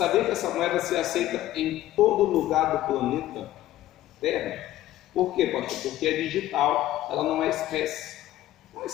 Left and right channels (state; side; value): quieter; right; 14.4 dB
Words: que essa moeda se aceita em todo lugar do planeta Terra? Por quê, pastor? Porque é digital, ela não é espécie. Não é